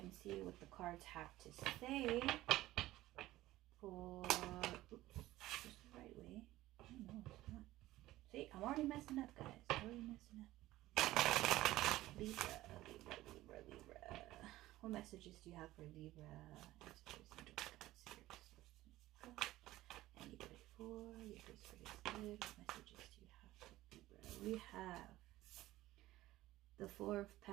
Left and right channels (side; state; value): left; quieter; 16.4 dB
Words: and see what the cards have to say for... Oops. Just the right way. I don't know. It's not. See, I'm already messing up, guys. Already messing up. Libra, Libra, Libra, Libra. What messages do you have for Libra? Anybody for? Your first card is good. What messages do you have for Libra? We have the Four of